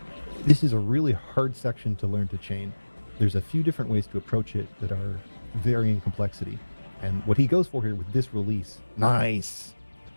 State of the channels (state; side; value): inverted; both; correlation -1.00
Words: This is a really hard section to learn to chain. There's a few different ways to approach it that are varying complexity. And what he goes for here with this release, nice!